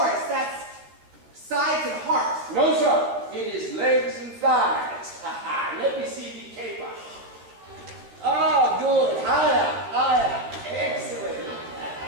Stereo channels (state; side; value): late; left; 13 ms